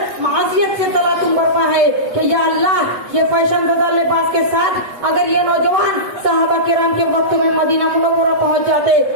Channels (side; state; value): left; late; 8.2 ms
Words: मासियत से तला तुम बरपा है कि या अल्लाह, ये फैशन ज़दा लिबास के साथ अगर ये नौजवान सहाबा किराम के वक्त में मदीना मुनव्वरा पहुंच जाते